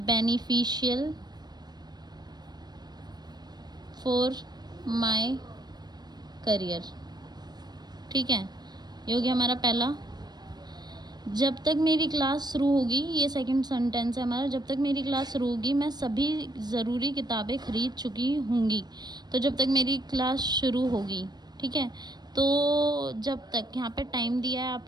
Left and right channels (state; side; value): late; left; 0.20 ms